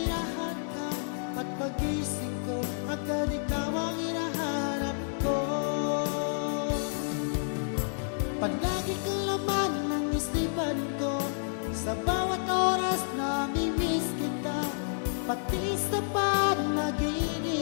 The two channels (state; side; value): silent; right; digital silence